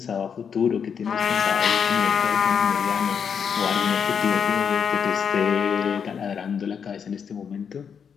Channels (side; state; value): right; quieter; 7.0 dB